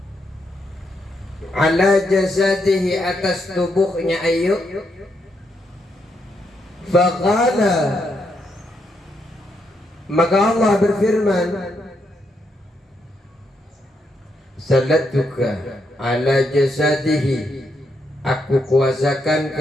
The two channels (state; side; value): normal; both; correlation 0.79